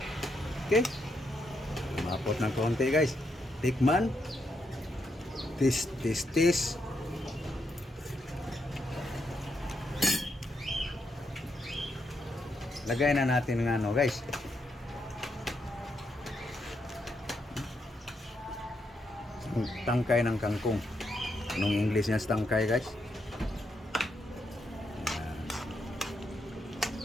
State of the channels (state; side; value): normal; both; correlation 0.80